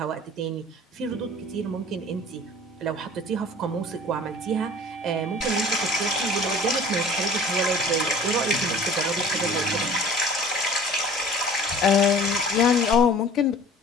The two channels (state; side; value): normal; both; correlation 0.46